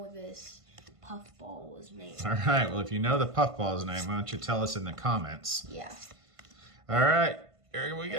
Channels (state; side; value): late; left; 1.5 ms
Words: this puffball's name. All right, well, if you know the puffball's name, why don't you tell us in the comments? Yeah. All right, here we